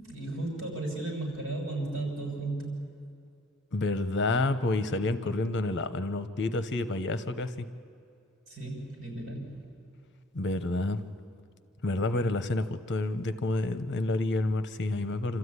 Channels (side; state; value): both; normal; correlation 0.59